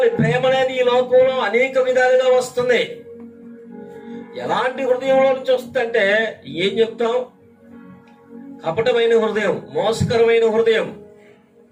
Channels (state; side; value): identical; both; correlation 1.00